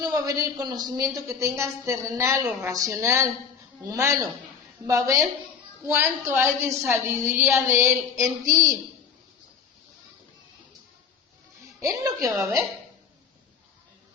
va a ver el conocimiento que tengas terrenal o racional, humano. Va a ver cuánto hay de sabiduría de Él en ti. Es lo que va a ver.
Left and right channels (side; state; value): right; quieter; 6.5 dB